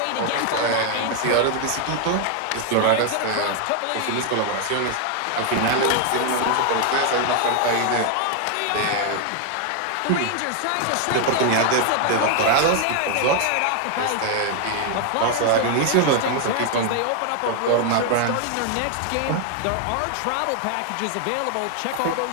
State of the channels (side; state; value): both; different; correlation 0.00